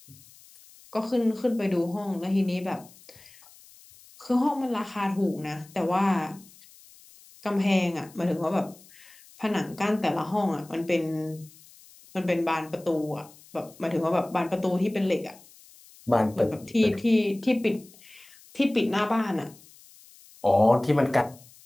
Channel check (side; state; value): left; noise; hiss, 24 dB below the sound